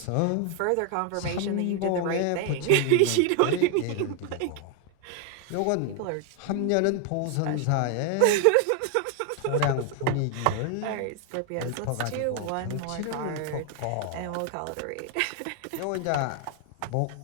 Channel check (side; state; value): both; different; correlation 0.01